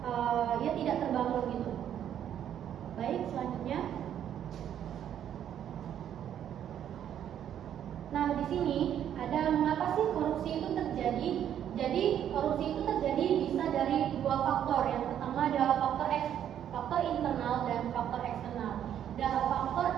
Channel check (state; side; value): quieter; left; 10.0 dB